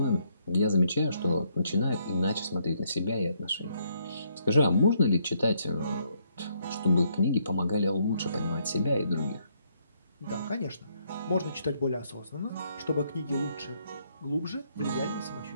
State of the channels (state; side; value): inverted; both; correlation -0.72